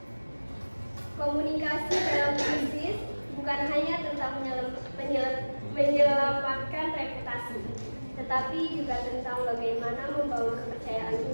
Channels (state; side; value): inverted; both; correlation -1.00